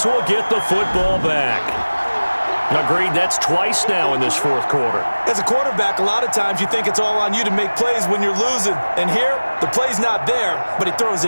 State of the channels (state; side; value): inverted; both; correlation -1.00